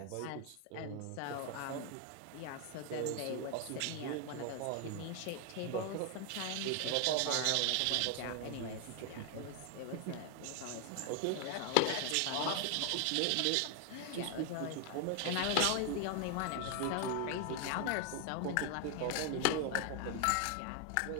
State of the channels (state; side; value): different; both; correlation 0.00